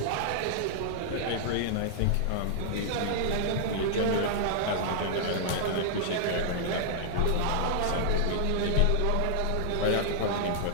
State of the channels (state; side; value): different; both; correlation -0.01